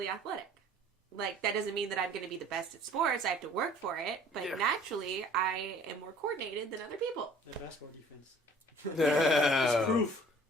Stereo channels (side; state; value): both; normal; correlation 0.51